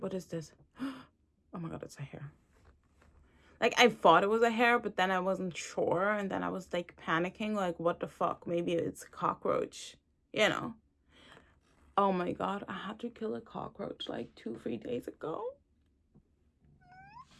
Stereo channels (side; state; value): both; identical; correlation 1.00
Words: is this? Oh my God, it's a hair. Like, I thought it was a hair, but then I wasn't sure. And then I was, like, panicking. Like, what the fuck? Maybe it's a cockroach. You know? Oh my God. I had to kill a cockroach, like, 2-3 days ago.